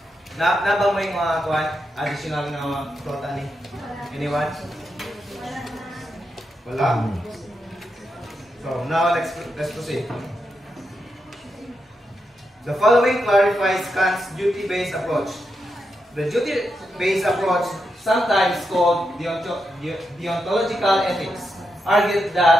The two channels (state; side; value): normal; both; correlation 0.85